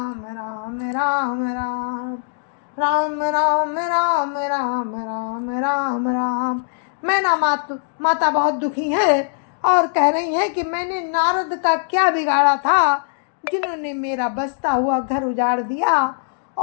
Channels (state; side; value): silent; right; digital silence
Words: राम राम राम राम राम राम राम राम राम राम। मैना माता बहुत दुखी है और कह रही हैं कि मैंने नारद का क्या बिगाड़ा था, जिन्होंने मेरा बसता हुआ घर उजाड़ दिया